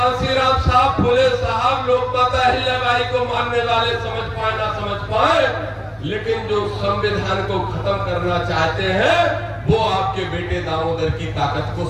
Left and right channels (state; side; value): identical; both; correlation 1.00